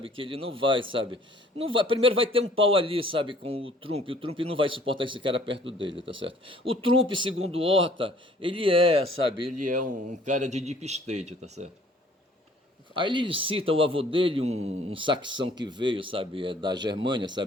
que ele não vai, sabe? Não vai, primeiro vai ter um pau ali, sabe, com o Trump não vai suportar esse cara perto dele, tá certo? O Trump, segundo o Horta, sabe, ele é um cara de deep state, tá certo? Aí ele cita o avô dele, um saxão que veio, sabe, da Germânia,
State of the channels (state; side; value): normal; both; correlation 0.56